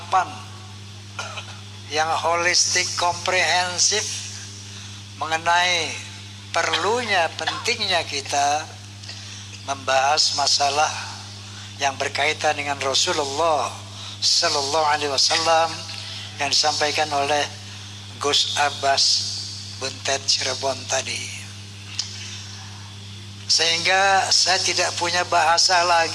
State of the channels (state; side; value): identical; both; correlation 1.00